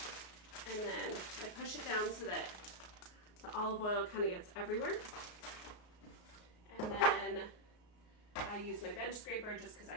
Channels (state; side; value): late; right; 33 ms